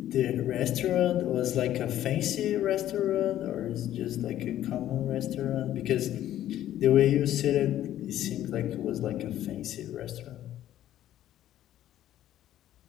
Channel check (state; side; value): quieter; right; 12.5 dB